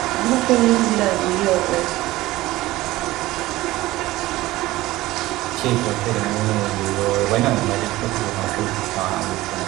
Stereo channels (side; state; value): left; quieter; 17.7 dB